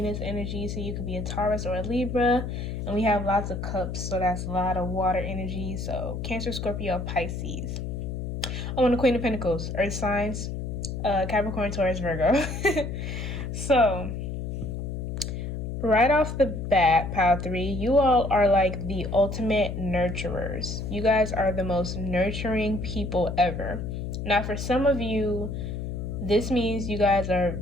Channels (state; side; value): noise; left; hum, 5 dB below the sound